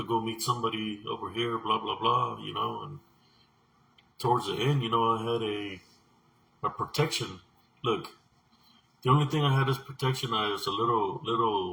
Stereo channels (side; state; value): both; identical; correlation 1.00